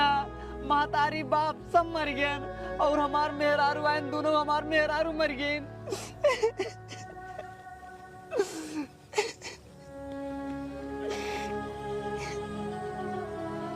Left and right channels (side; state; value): both; identical; correlation 1.00